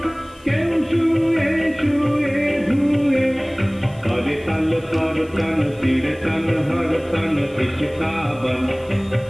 কেউ শুয়ে শুয়ে ধুয়ে করে তল কর তন চিরতন হর তন ইশিকাवन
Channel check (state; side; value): noise; left; hiss, 28 dB below the sound